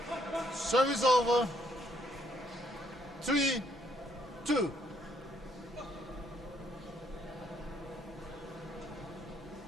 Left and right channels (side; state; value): both; normal; correlation 0.70